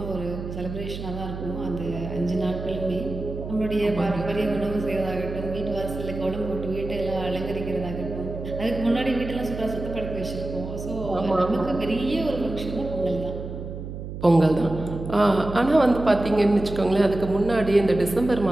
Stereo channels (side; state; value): right; noise; hum, 8 dB below the sound